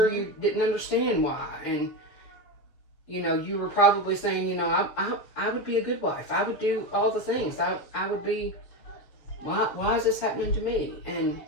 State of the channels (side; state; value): right; late; 7.3 ms